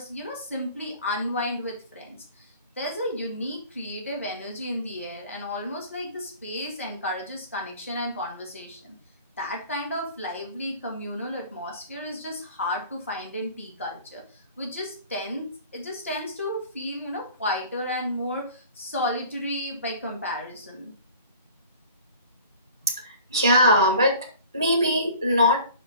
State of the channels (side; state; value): both; inverted; correlation -0.46